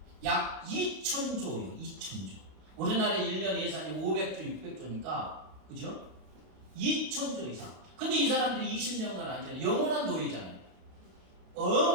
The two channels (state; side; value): late; left; 32 ms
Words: 약 2,000조예요. 2,000조. 우리나라 1년 예산이 500조, 600조니까 그죠? 2,000조 이상. 근데 이 사람들이 20년간 하잖아요. 영원한 노예잖아요.